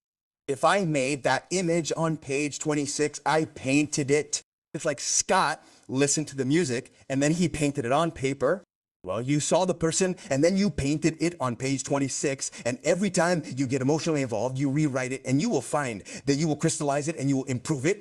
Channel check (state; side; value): identical; both; correlation 1.00